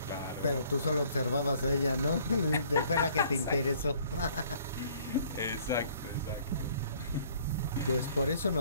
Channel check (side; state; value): both; inverted; correlation -0.59